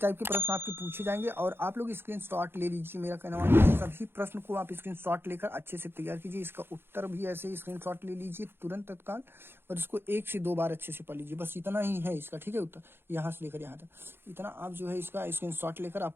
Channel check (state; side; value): late; left; 0.11 ms